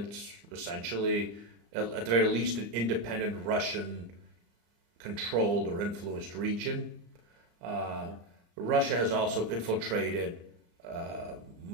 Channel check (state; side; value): late; left; 34 ms